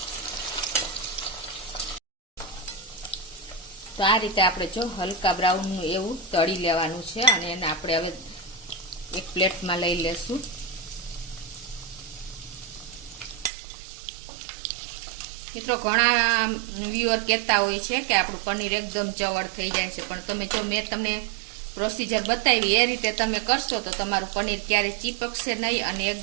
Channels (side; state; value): left; drops out; at 13.5 s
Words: તો આ રીતે આપણે જો હલકા બ્રાઉનનું એવું તળી લેવાનું છે અને એને આપણે હવે એક પ્લેટમાં લઈ લેશું. મિત્રો ઘણા વ્યુઅર કહેતા હોય છે કે આપણું પનીર એકદમ ચવડ થઈ જાય છે, પણ તમે જો મેં તમને પ્રોસીજર બતાવી એ રીતે તમે કરશો તો તમારું પનીર ક્યારેય ચીપકશે નહીં અને